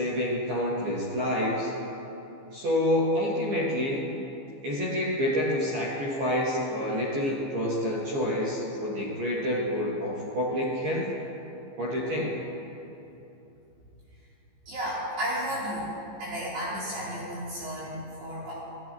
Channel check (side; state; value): left; late; 15 ms